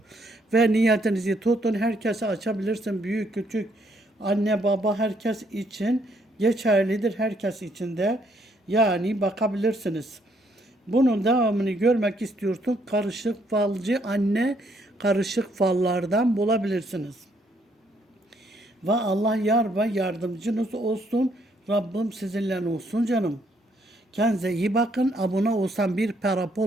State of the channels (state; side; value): normal; both; correlation 0.70